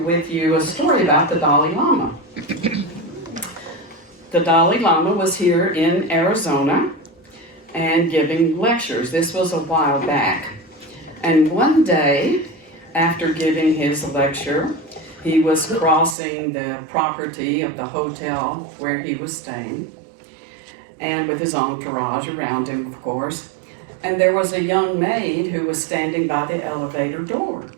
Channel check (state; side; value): drops out; left; at 16.2 s